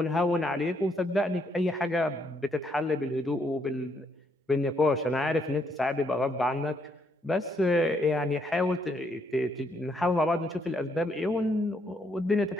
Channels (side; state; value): both; normal; correlation 0.73